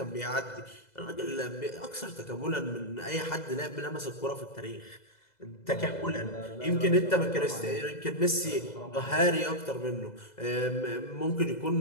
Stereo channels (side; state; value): right; late; 2.0 ms